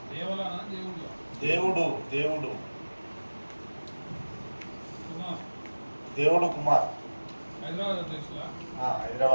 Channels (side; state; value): both; inverted; correlation -1.00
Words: దేవుడు దేవుడు దేవుడు కుమార్